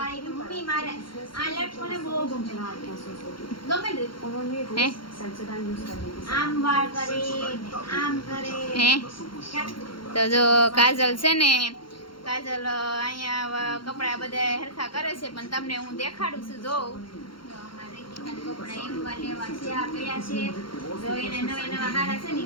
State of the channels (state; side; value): late; right; 0.73 ms